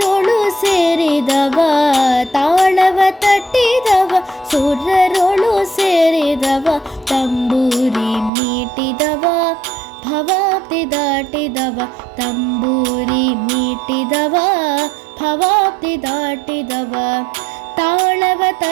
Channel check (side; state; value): left; drops out; at 8.3 s